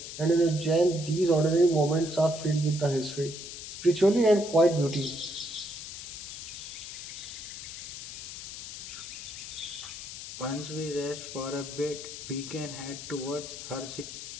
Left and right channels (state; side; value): noise; left; hiss, 9 dB below the sound